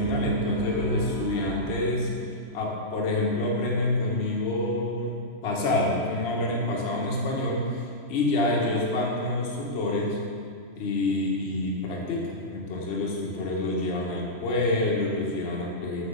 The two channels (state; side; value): late; right; 3.1 ms